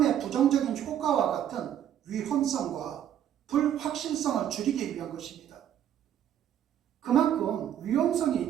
부정적인 효과와 같은 위험성과 불확실성을 줄이기 위한 것입니다. 그만큼 위험성이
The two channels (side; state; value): left; quieter; 10.3 dB